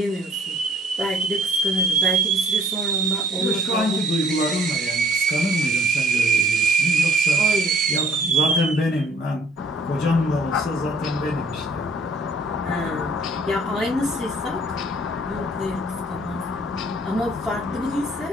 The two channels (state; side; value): normal; both; correlation 0.59